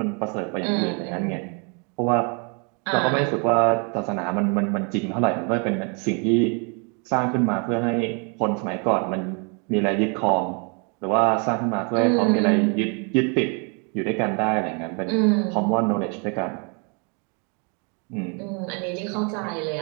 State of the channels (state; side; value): quieter; left; 35.4 dB